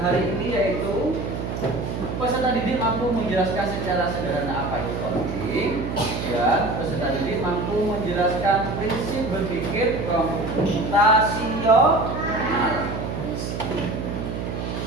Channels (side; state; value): right; noise; hum, 4 dB below the sound